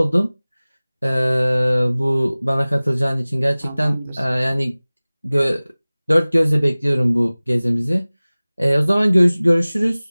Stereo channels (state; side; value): inverted; both; correlation -0.99